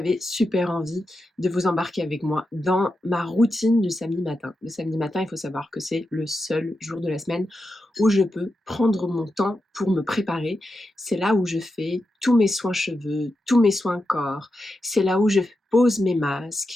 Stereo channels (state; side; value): normal; both; correlation 0.88